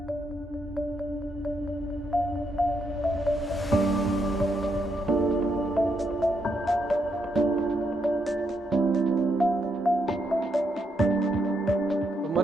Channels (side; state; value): both; normal; correlation 0.78